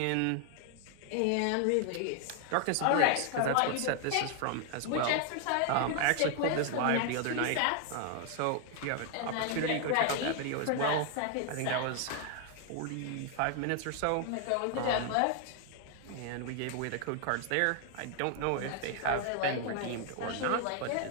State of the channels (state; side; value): different; both; correlation 0.00